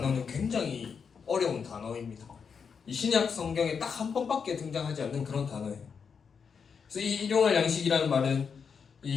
굉장히 어려운 단어입니다. 이 신약 성경에 딱 한 번밖에 등장하지 않는 그런 단어예요. 그래서 이 일용할 양식이라는 말은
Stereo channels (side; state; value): right; quieter; 6.2 dB